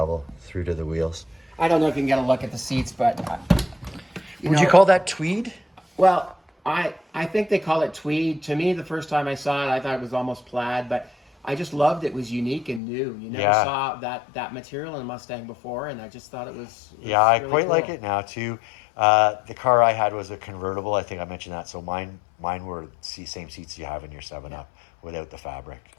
through to the wheels. I don't know if you can get a look at the seats, but... Would you call that tweed? Well, I think they call it tweed. To me, the first time I saw it, I thought it was almost plaid, but I just loved it. Was unique and new. You never saw that material in a Mustang before, and I just thought it was I really quite cool. Like it now, too. The car I had was a convertible. I think I mentioned that. So mine were the same seats you have in your 7-Up without the fabric.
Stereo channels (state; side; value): drops out; right; at 12.8 s